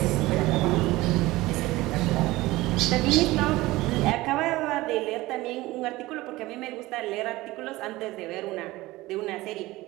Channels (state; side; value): quieter; left; 19.1 dB